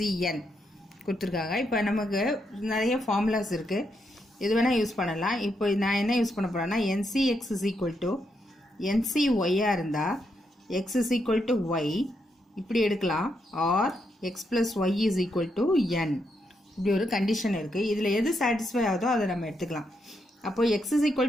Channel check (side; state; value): both; normal; correlation 0.80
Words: கொடுத்துருக்காங்க. இப்போ நமக்கு நிறைய ஃபார்முலாஸ் இருக்குது, இது வேணால் யூஸ் பண்ணலாம். இப்போ நான் என்ன யூஸ் பண்ண போகிறேன்னா NCX is equal to NCYயாக இருந்தால் X is equal to Y இப்படி எடுக்கலாம், R X plus Y is equal to N இப்படி ஒரு கண்டிஷன் இருக்குது. இதில் எது சாட்டிஸ்ஃபை ஆகுதோ அதை நம்ம எடுத்துக்கலாம். அப்போ x is equal